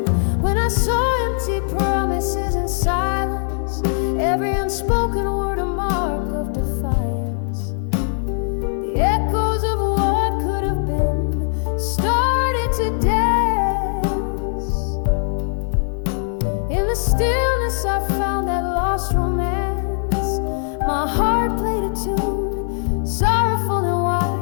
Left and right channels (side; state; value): right; silent; 56 dB below the other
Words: When I saw empty promises and silence, every unspoken word a mark of defiance. The echoes of what could have been started to dance. In the stillness I found that lost romance. My heart played a tune, sorrowful and